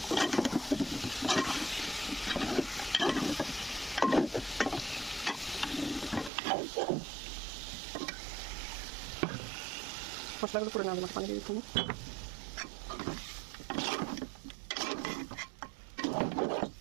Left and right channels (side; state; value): left; drops out; at 6.3 s